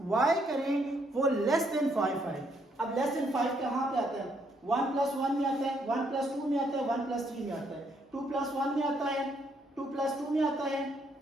वाई करें वो लेस देन 5 आए। अब लेस देन 5 कहाँ पे आता है? 1 प्लस 1 में आता है, 1 प्लस 2 में आता है, 1 प्लस 3 में आता है, 2 प्लस 1 में आता है, 2 प्लस 2 में आता है,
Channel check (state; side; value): normal; both; correlation 0.72